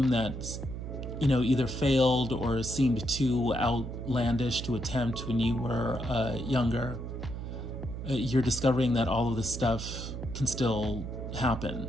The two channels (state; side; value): noise; right; hum, 7 dB below the sound